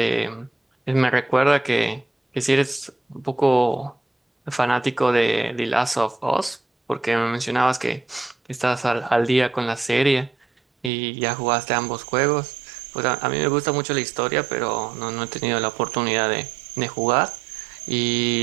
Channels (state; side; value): drops out; left; at 10.9 s